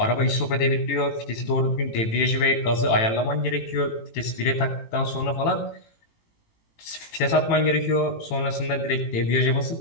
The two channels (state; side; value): late; right; 18 ms